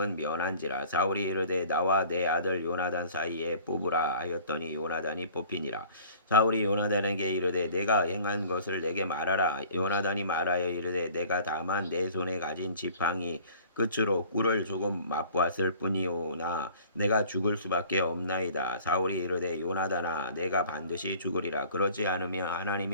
면한지라. 사울이 이르되 나와 내 아들 요나단 사이에 뽑으라 하였더니 요나단이 뽑히니라. 사울이 요나단에게 이르되 내가 행한 것을 내게 말하라. 요나단이 말하여 이르되 내가 다만 내 손에 가진 지팡이 끝으로 꿀을 조금 맛보았을 뿐이오나 내가 죽을 수밖에 없나이다. 사울이 이르되 요나단아 내가 반드시 죽으리라. 그렇지 않으면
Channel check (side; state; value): both; inverted; correlation -0.49